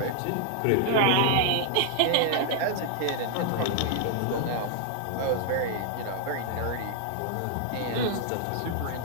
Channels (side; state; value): both; different; correlation -0.01